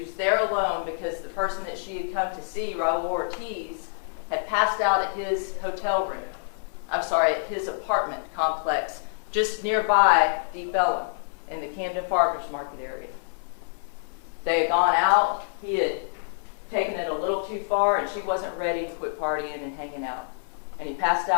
there alone because the person that she had come to see, Raul Ortiz, had passed out at his at his apartment complex just nearby Deep Ellum in the Camden Farmers Market area. They had gone out, he had taken it a little too far, and she wasn't ready to quit partying and hanging out. And he passed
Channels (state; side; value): silent; right; 60 dB below the other